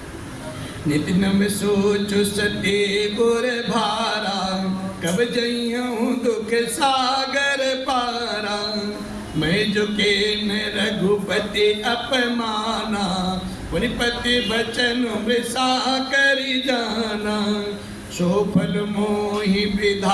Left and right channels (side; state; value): both; identical; correlation 1.00